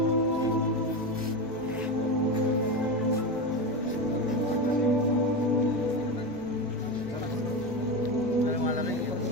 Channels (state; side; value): normal; both; correlation 0.19